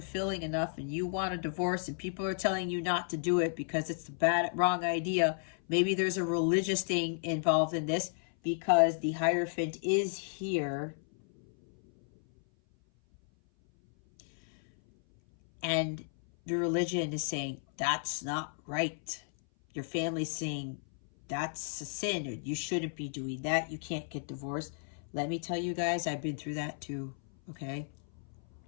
enough and you want a divorce and people are telling you not to do it because it's the wrong idea. Maybe there's a religious thing involved in this because the Hierophant is here. And the religion is saying, that's not right. Your family's saying, that's a sin, or you shouldn't be doing that. You can't get divorced. Let me tell you guys, I've been through that too, okay?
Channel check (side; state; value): right; silent; 56 dB below the other